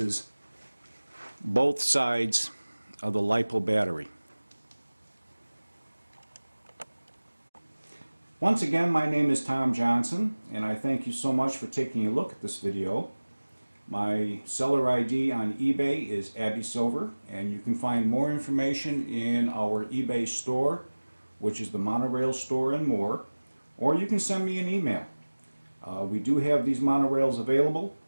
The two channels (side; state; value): both; inverted; correlation -1.00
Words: both sides of the LiPo battery. Once again, my name is Tom Johnson, and I thank you so much for taking a look at this video. My seller ID on eBay is Abby Silver, and you can find more information in our eBay store, which is the Monorail store and more, or you can send me an email. We do have these monorails available.